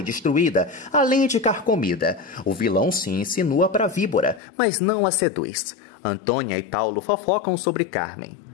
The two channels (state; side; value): drops out; right; at 4.4 s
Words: destruída, além de carcomida. O vilão se insinua para a víbora, mas não a seduz. Antônia e Paulo fofocam sobre Carmen.